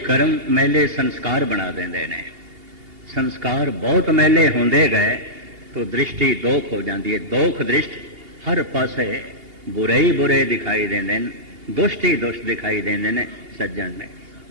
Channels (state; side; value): late; left; 2.8 ms